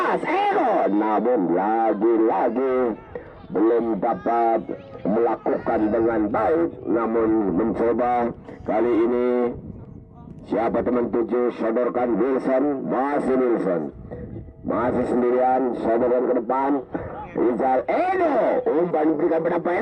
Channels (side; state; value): both; identical; correlation 1.00